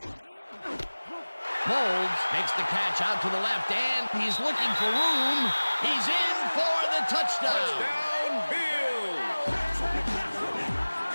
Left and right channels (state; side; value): inverted; both; correlation -1.00